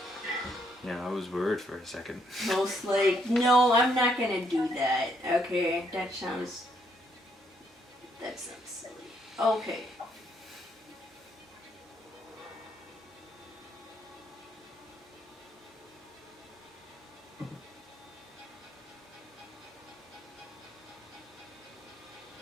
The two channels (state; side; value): normal; both; correlation 0.72